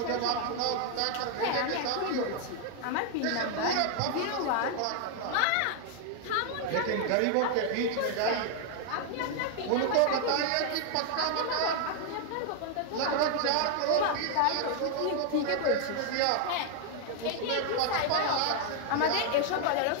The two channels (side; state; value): both; different; correlation 0.00